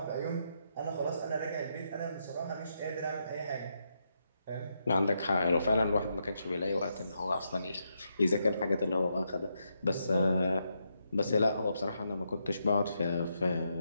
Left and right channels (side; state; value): both; inverted; correlation -0.81